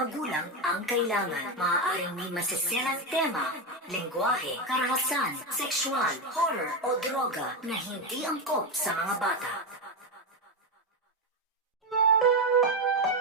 ang kailangan. Maaaring may masiserang tema, lengguwahe, karahasan, sexual, horror o droga na hindi angkop sa mga bata.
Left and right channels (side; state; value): both; normal; correlation 0.11